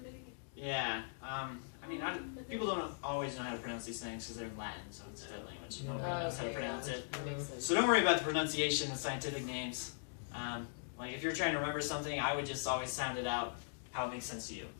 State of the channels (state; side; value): silent; right; digital silence